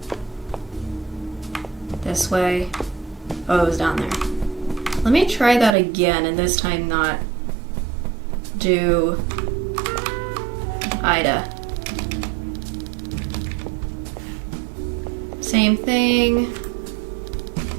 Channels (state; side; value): drops out; left; at 5.8 s